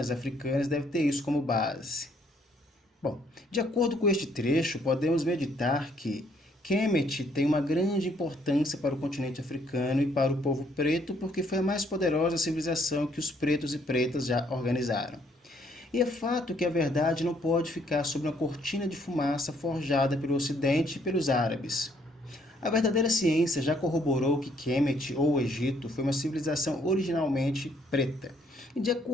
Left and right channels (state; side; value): normal; both; correlation 0.67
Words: africanas deve ter isso como base. Bom, de acordo com este trecho, podemos meditar que Kemet tem uma grande importância para o continente africano e para o povo preto porque foi a mais poderosa civilização que os pretos e pretas já organizaram. E é fato que a verdade não pode ficar sob uma cortina de fumaça forjada pelo Ocidente e pelos árabes. A verdadeira ciência já corroborou que Kemet, ou Egito, foi uma civilização originalmente preta. E de